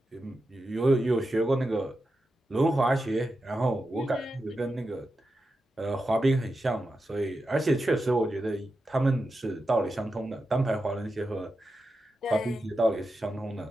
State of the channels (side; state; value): both; normal; correlation 0.89